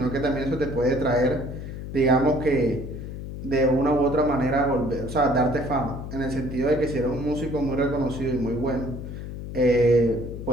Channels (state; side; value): noise; left; hum, 8 dB below the sound